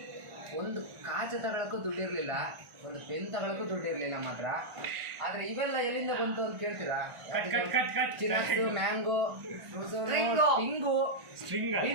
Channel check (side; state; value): left; late; 1.5 ms